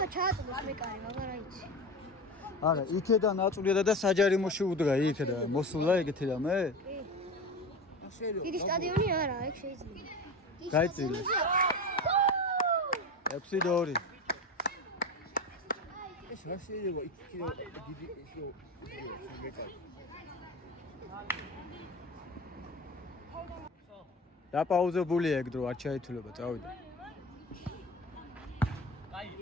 ჩააწოდოს მეკარე, მაგრამ აიცი. არა, იქედან აწვდიდა და საჯარიმოში უდგა, იქედა მოსულა ეგეთი რამე? დიდი სტადიონი არა, ეგ შეიძლება. გაიწილე. 6-2. ეს რა შეიძლება იქ დიდი ისო მეკარე. დაპაუზებულია ეგ დრო, არ ჩაითვლება, წავიდა.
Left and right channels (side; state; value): both; normal; correlation 0.28